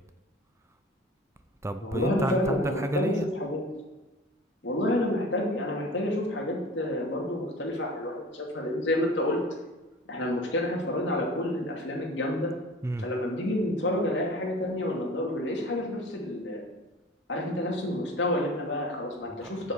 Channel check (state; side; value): normal; both; correlation 0.40